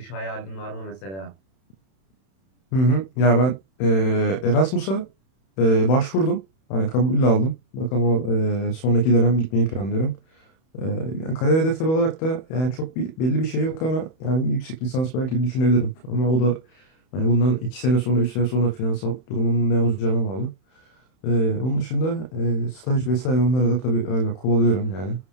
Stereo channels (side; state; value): right; late; 31 ms